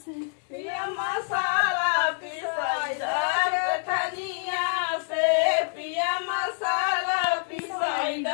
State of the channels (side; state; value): right; silent; digital silence